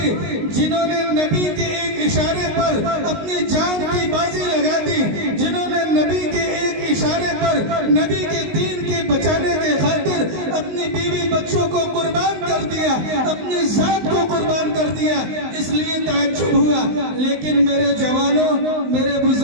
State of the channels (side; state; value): left; late; 19 ms